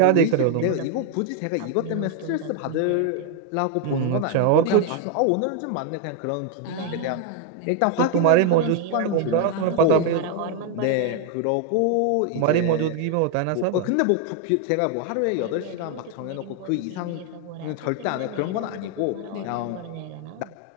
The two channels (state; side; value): different; both; correlation 0.01